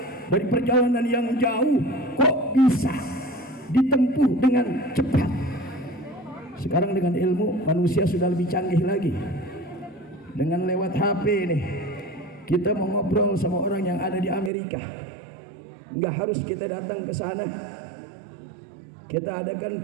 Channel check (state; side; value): drops out; left; at 14.5 s